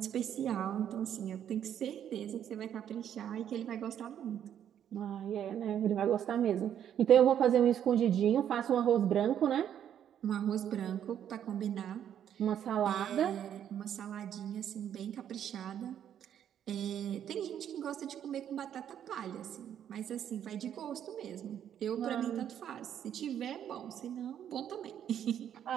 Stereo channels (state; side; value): quieter; left; 9.7 dB